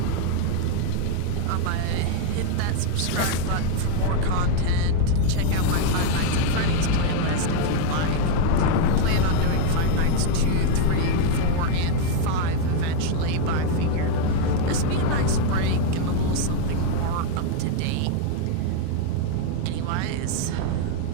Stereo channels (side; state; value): both; different; correlation 0.00